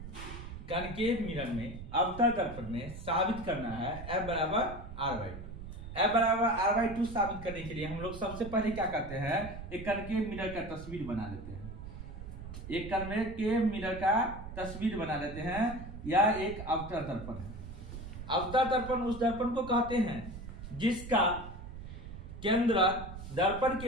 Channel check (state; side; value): noise; right; rumble, 11 dB below the sound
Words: कनकेव मिरर में अवतल दर्पण में साबित करना है F बराबर R/2। F बराबर R/2 साबित करने के लिए हम लोग सबसे पहले क्या करते हैं, एक कनकेव मिरर का तस्वीर बना लेते हैं। एक कनकेव मिरर का तस्वीर बना लेते हैं। यह एक अवतल दर्पण है। अवतल दर्पण उस दर्पण को कहते हैं जिसका केंद्र दर्पण